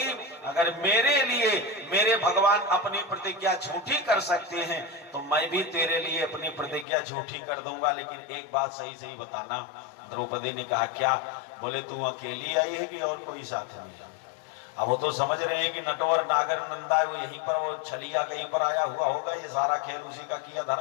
अगर मेरे लिए मेरे भगवान अपनी प्रतिज्ञा झूठी कर सकते हैं तो मैं भी तेरे लिए अपनी प्रतिज्ञा झूठी कर दूंगा, लेकिन एक बात सही सही बताना। द्रौपदी ने कहा क्या? बोले तू अकेली आई है कि और कोई साथ में? अब वो तो समझ रहे हैं कि नटवर नागर नंदा है, वो यहीं पर वो छलिया कहीं पर आया हुआ होगा, ये सारा खेल उसी का किया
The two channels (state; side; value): drops out; right; at 6.9 s